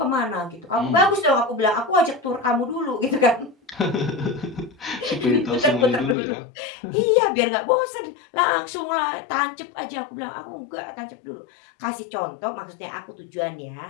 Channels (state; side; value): drops out; right; at 6.2 s